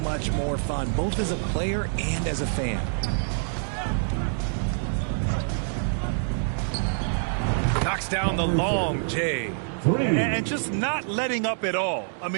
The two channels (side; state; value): left; silent; digital silence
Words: much more fun, both as a player and as a fan. Knocks down the long J. And just not letting up at all. I